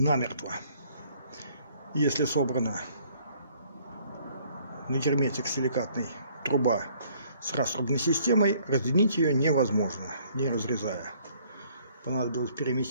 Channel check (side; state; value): both; inverted; correlation -0.61